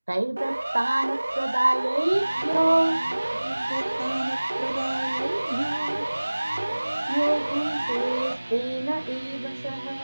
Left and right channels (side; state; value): both; inverted; correlation -1.00